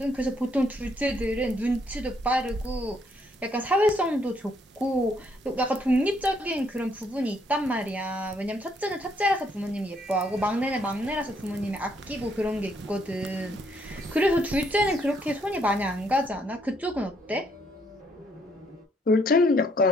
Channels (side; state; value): both; normal; correlation 0.70